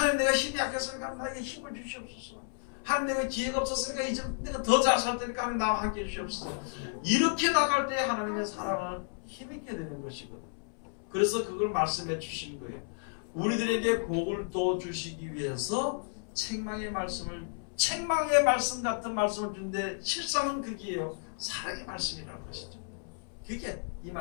내가 힘이 약했으니까 나에게 힘을 주시옵소서. 하나님 내가 기회가 없었으니까 이제 내가 더 잘 살 테니까 하나님 나와 함께 해주시옵소서. 이렇게 나갈 때 하나님의 사랑을 힘있게 되는 것이거든. 그래서 그걸 말씀해 주신 거예요. 우리들에게 복을 더 주시기 위해서 책망의 말씀 같은 말씀을 주는데 실상은 그게요. 사랑의 말씀이라는 것이죠. 그게 이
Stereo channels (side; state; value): right; silent; 56 dB below the other